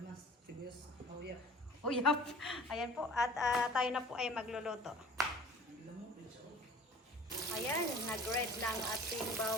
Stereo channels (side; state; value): both; normal; correlation 0.46